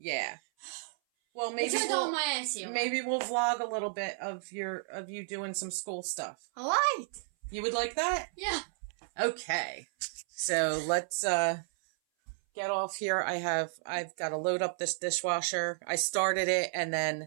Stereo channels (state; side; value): silent; left; 56 dB below the other